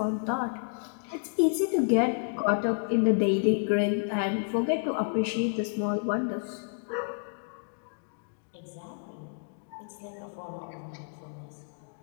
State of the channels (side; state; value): right; silent; digital silence